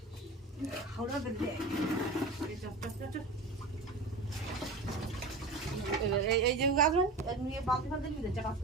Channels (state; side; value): quieter; left; 3.2 dB